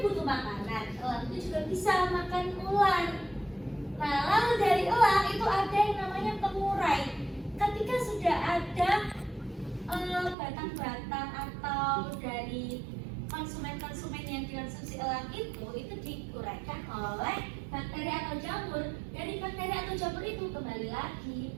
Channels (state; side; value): drops out; left; at 10.4 s